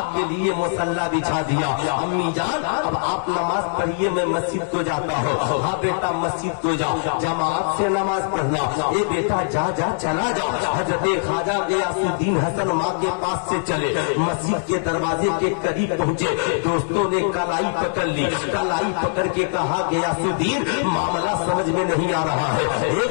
के लिए मुसल्ला बिछा दिया। अम्मी जान अब आप नमाज पढ़िए, मैं मस्जिद को जाता हूँ। हाँ बेटा मस्जिद को जाओ, जमात से नमाज पढ़ना। ये बेटा जा जा चला जाओ। हजरत ख्वाजा गियासुद्दीन हसन माँ के पास से चले, मस्जिद के दरवाजे के करीब पहुँचे। दोस्तों ने कलाई पकड़ ली, कलाई पकड़ के कहा गियासुद्दीन मामला समझ में नहीं आ रहा है। हे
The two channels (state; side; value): silent; right; digital silence